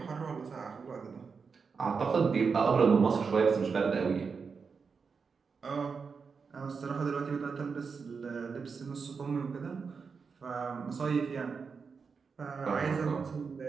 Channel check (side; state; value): left; quieter; 5.4 dB